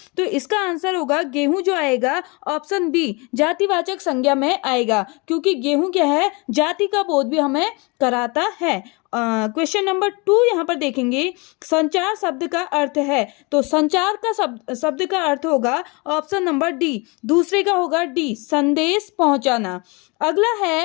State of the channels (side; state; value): right; quieter; 28.5 dB